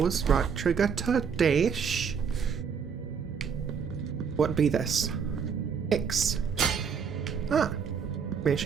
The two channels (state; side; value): quieter; left; 6.5 dB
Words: Right trigger to dash. What be this? X. Ah.